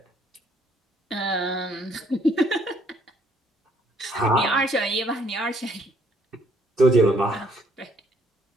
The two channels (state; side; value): normal; both; correlation 0.66